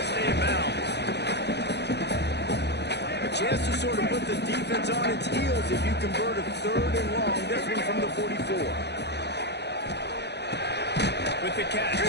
stay in bounds. A chance to sort of put the defense on its heels if you convert a 3rd and long. This one from the 44. With the catch,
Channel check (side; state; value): right; late; 0.49 ms